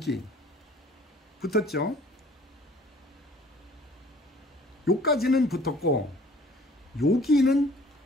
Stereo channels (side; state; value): both; normal; correlation 0.53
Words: 붙었죠. 요까지는 붙었고 여기는